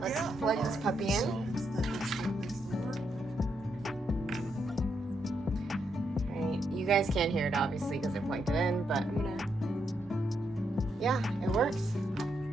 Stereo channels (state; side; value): normal; both; correlation 0.80